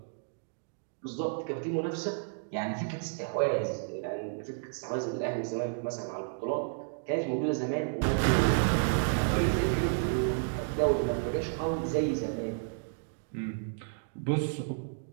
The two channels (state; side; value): silent; left; digital silence